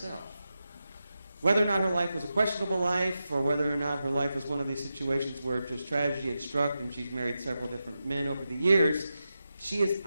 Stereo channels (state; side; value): inverted; both; correlation -0.90